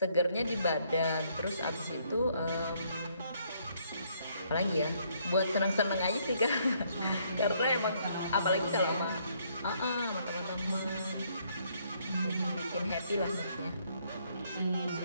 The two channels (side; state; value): both; inverted; correlation -0.69